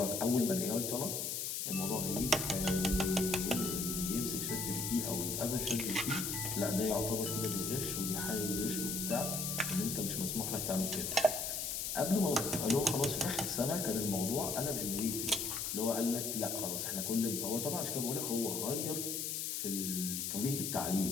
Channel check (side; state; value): left; noise; hiss, 2 dB below the sound